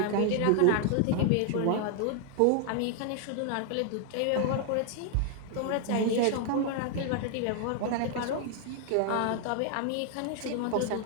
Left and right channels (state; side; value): different; both; correlation 0.00